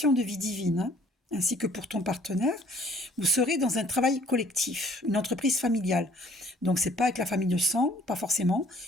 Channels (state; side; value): normal; both; correlation 0.57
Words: de vie divine, hein, ainsi que pour ton partenaire, vous serez dans un travail collectif, une entreprise familiale. Donc, c'est pas avec la famille de sang, pas forcément,